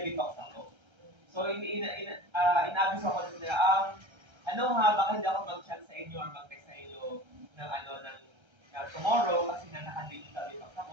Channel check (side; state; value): left; late; 1.3 ms